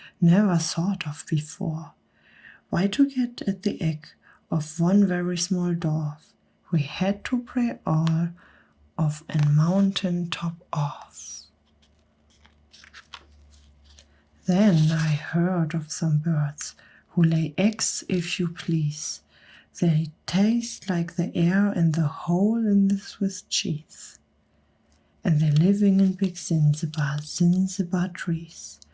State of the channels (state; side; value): identical; both; correlation 1.00